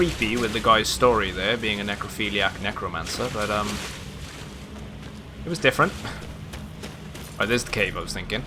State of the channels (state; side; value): identical; both; correlation 1.00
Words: with the guy's story there, being a necrophiliac necromancer, but it was different. Oh, there's the cave I was thinking.